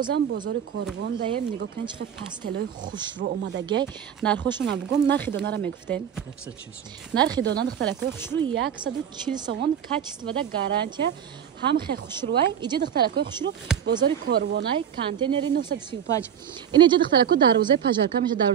бозори Корвон даем нигоҳ кунед чӣ пастелои хушрӯ омадагӣ. Нархошона бугум, нархи донара мегуфтем. 140 сом. Нархи дона духтарако хушрӯ 140 сомон, качествода гарантия. ҳам хе хушрӯай, иҷа духтарако хушрӯ бозори Корвонай, контейнери 935. Ин иҷа духтарако дарвозаи пажарка меша,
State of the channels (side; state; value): left; quieter; 8.9 dB